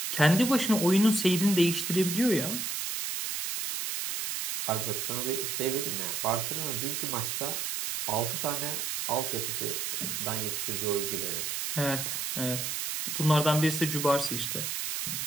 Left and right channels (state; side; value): noise; right; hiss, 2 dB below the sound